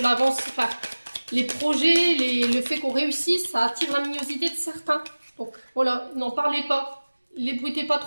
enfin, les projets, le fait qu'on réussisse, ça attire la luminosité de certains. Donc, voilà, n'en parlez pas. L'ébruitez pas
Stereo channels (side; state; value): both; inverted; correlation -1.00